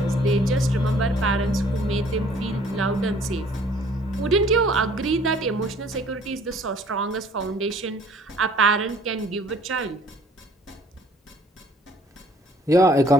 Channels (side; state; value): both; normal; correlation 0.56